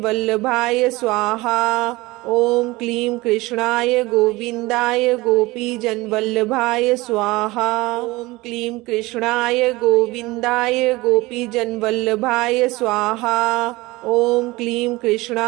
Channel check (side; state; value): left; quieter; 21.2 dB